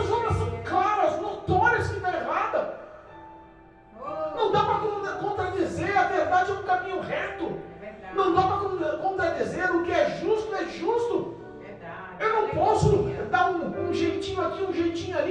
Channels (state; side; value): identical; both; correlation 1.00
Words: obras são claras, notórias que está errada. Não dá para contradizer, a verdade é um caminho reto. Não dá para contradizer, o que é justo. Eu não posso dar um jeitinho aqui, um jeitinho